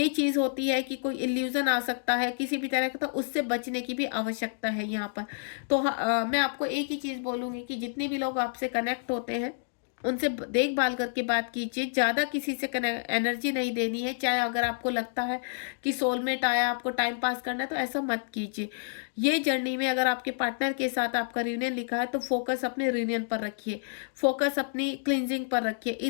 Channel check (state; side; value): silent; right; digital silence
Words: चीज़ होती है कि कोई इल्यूजन आ सकता है किसी भी तरह का, तो उससे बचने की भी आवश्यकता है यहाँ पर। तो मैं आपको एक ही चीज़ बोलूँगी कि जितने भी लोग आपसे कनेक्ट होते हैं उनसे देखभाल करके बात कीजिए, ज़्यादा किसी से एनर्जी नहीं देनी है। चाहे अगर आपको लगता है कि सोलमेट आया, आपको टाइम पास करना है, तो ऐसा मत कीजिए। ये जर्नी में अगर आपके पार्टनर के साथ आपका रियूनियन लिखा है, तो फोकस अपने रियूनियन पर रखिए, फोकस अपनी क्लिनजिंग पर रखिए,